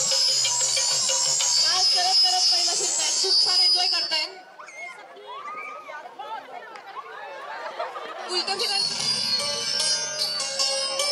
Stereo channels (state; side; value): identical; both; correlation 1.00